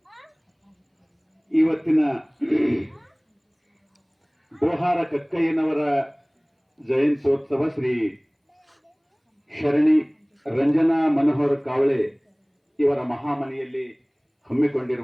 ಇವತ್ತಿನ ಡೋಹಾರ ಕಕ್ಕಯ್ಯನವರ ಜಯಂತ್ಯೋತ್ಸವ ಶ್ರೀ ಶರಣಿ ರಂಜನಾ ಮನೋಹರ್ ಕಾವಳೆ ಇವರ ಮಹಾಮನೆಯಲ್ಲಿ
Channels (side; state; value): both; identical; correlation 1.00